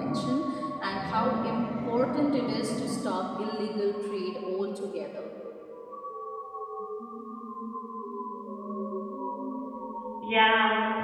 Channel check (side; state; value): both; identical; correlation 1.00